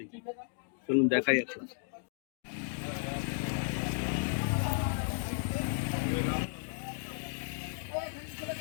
চলুন দেখাই একটা।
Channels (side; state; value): right; silent; digital silence